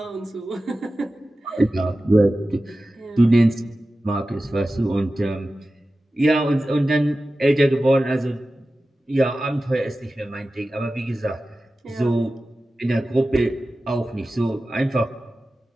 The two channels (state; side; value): normal; both; correlation 0.95